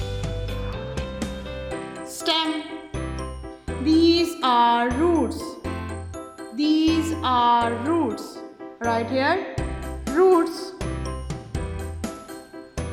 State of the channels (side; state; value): both; identical; correlation 1.00